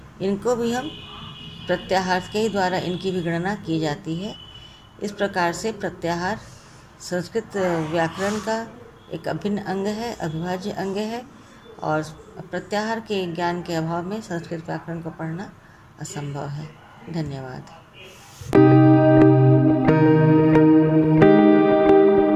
इनको भी हम प्रत्याहार के ही द्वारा इनकी भी गणना की जाती है। इस प्रकार से प्रत्याहार संस्कृत व्याकरण का एक अभिन्न अंग है, अविभाज्य अंग है, और प्रत्याहार के ज्ञान के अभाव में संस्कृत व्याकरण को पढ़ना असंभव है। धन्यवाद।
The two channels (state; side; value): identical; both; correlation 1.00